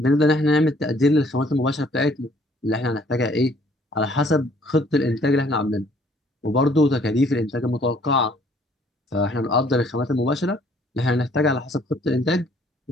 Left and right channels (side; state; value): both; normal; correlation 0.61